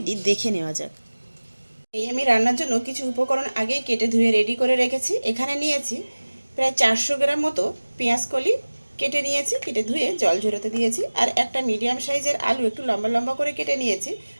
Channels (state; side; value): inverted; both; correlation -1.00